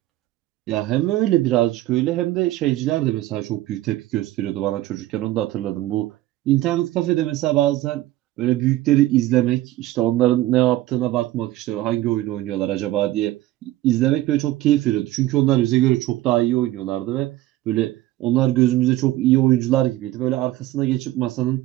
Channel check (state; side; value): quieter; left; 15.8 dB